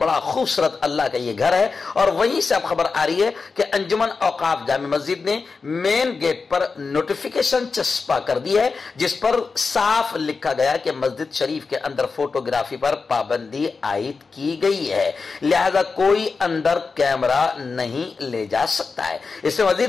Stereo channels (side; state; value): right; quieter; 4.6 dB